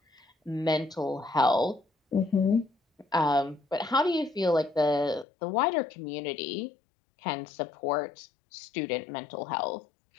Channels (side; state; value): right; drops out; at 5.2 s